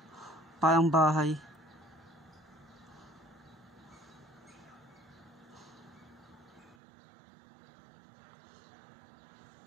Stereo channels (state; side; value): drops out; left; at 6.8 s